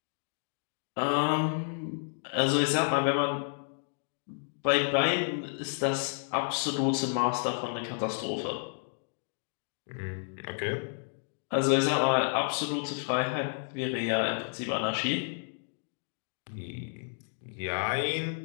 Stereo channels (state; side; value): silent; right; digital silence